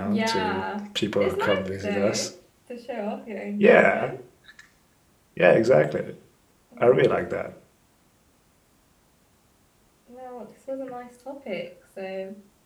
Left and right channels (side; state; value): both; identical; correlation 1.00